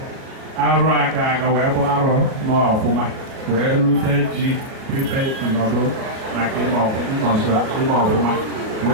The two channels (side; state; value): left; late; 38 ms